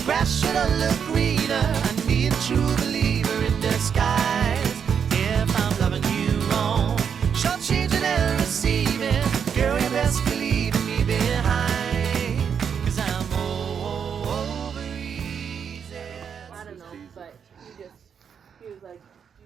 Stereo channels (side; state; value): left; quieter; 7.3 dB